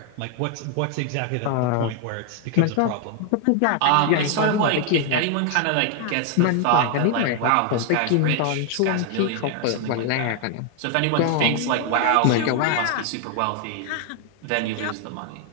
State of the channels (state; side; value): different; both; correlation 0.00